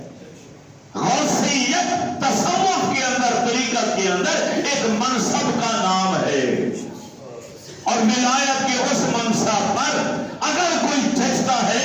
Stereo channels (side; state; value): both; identical; correlation 1.00